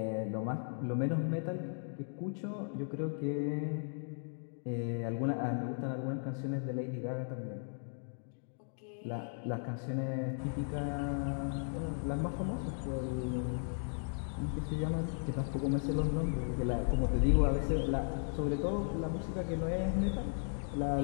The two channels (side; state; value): right; silent; digital silence